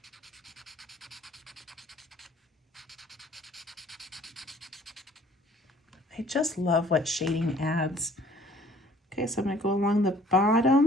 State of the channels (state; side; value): normal; both; correlation 0.55